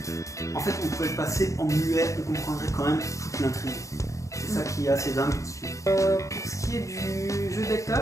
En fait, on pourrait le passer en muet, on comprendrait quand même toute l'intrigue. C'est ça qui est assez dingue dessus. Pour ce qui est du jeu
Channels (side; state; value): right; late; 0.15 ms